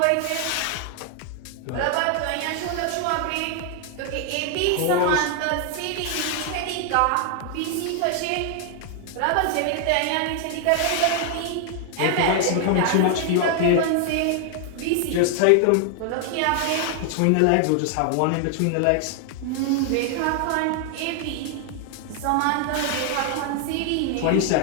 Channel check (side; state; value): both; different; correlation 0.00